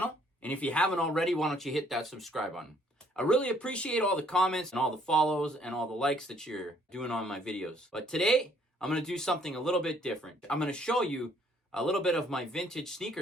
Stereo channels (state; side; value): normal; both; correlation 0.64